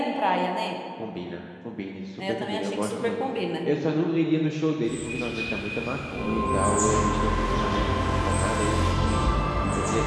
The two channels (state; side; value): identical; both; correlation 1.00